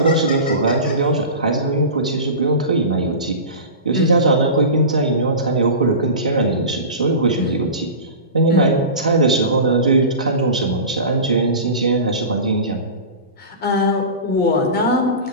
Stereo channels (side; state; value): both; inverted; correlation -0.30